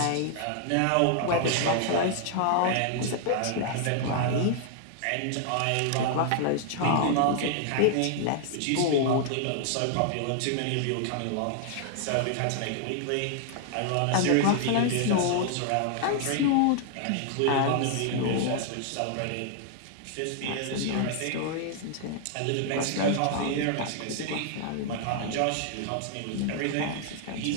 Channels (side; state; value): both; different; correlation 0.00